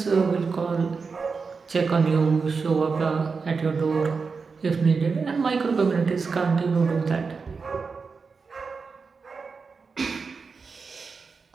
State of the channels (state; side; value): quieter; left; 4.9 dB